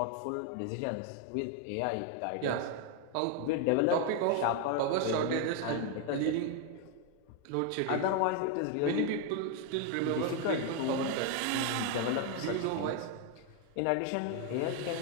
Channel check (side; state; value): both; different; correlation 0.01